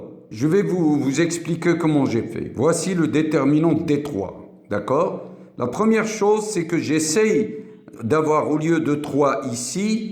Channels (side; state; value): both; identical; correlation 1.00